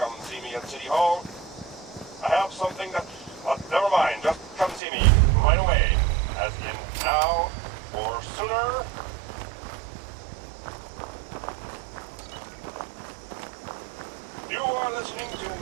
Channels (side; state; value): left; drops out; at 4.8 s